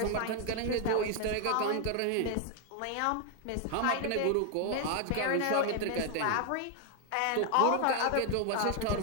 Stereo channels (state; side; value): different; both; correlation 0.00